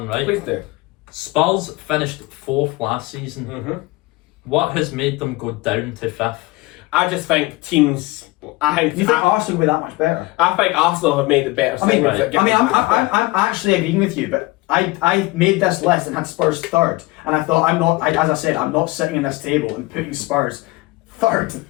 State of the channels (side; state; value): right; quieter; 21.8 dB